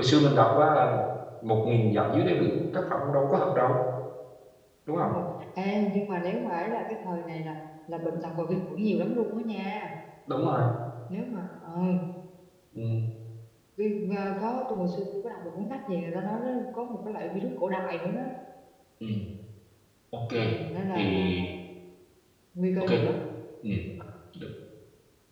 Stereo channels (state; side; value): identical; both; correlation 1.00